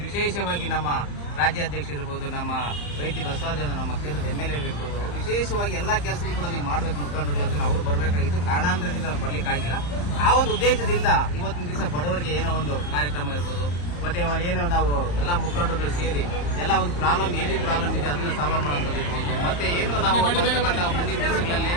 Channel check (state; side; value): late; right; 34 ms